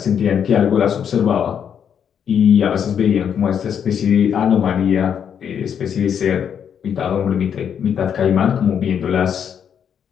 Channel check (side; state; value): right; quieter; 8.1 dB